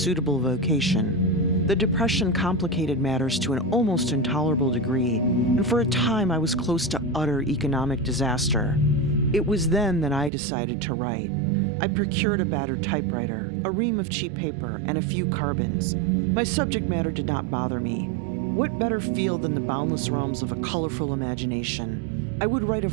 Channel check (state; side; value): drops out; left; at 10.3 s